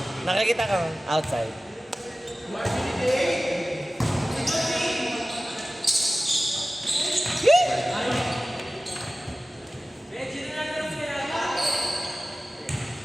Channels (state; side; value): normal; both; correlation 0.96